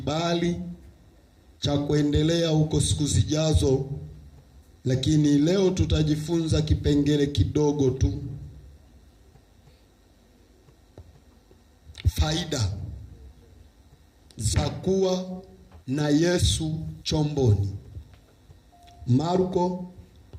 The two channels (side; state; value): both; identical; correlation 1.00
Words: cha kuendelea huko siku zijazo, lakini leo tutajifunza kipengele kidogo tu. Faida za kuwa na Yesu chomboni. Marko